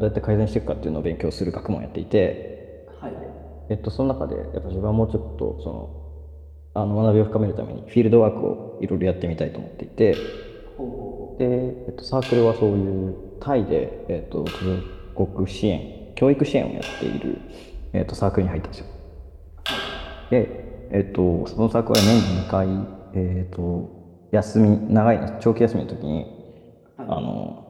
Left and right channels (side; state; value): both; identical; correlation 1.00